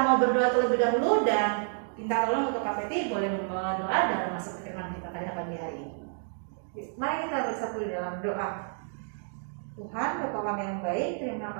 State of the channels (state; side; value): silent; left; 58 dB below the other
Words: mau berdoa terlebih dahulu dan minta tolong untuk Kak Peti boleh berdoa dalam masuk ke firman kita pada pagi hari ini. Mari kita bersatu di dalam doa. Tuhan, Bapa kami yang baik, terima